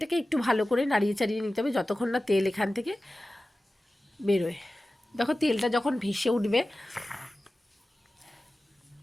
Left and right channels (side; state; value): both; normal; correlation 0.95